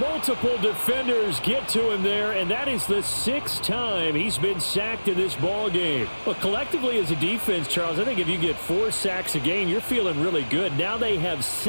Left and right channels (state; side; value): inverted; both; correlation -1.00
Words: Multiple defenders get to him there, and that is the 6th time he's been sacked in this ball game. But collectively as a defense, Charles, I think if you get 4 sacks a game, you're feeling really good. Now they have